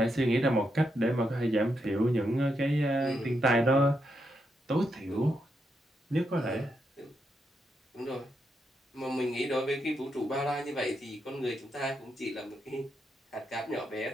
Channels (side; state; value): both; normal; correlation 0.82